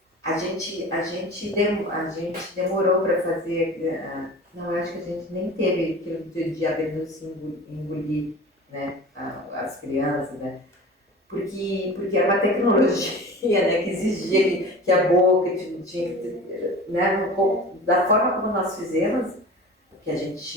a gente demorou para fazer, não, eu acho que a gente nem teve aquilo de a Bernúcia engolir, né? As crianças, né? Porque era uma tecnologia, né, que exigia que a boca tinha que ter, né, da forma como nós fizemos, que a gente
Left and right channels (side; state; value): both; normal; correlation 0.37